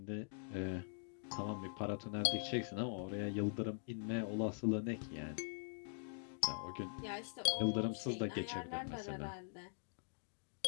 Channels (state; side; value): silent; right; digital silence